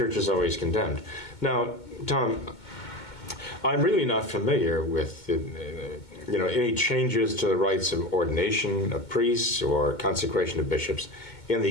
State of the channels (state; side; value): late; right; 2.2 ms